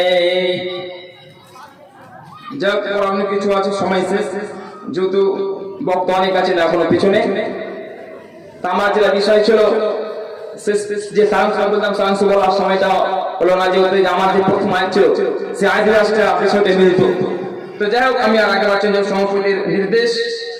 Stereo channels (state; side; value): identical; both; correlation 1.00